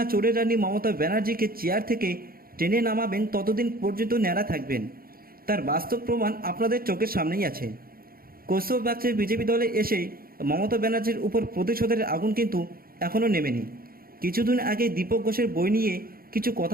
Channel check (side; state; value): left; late; 0.43 ms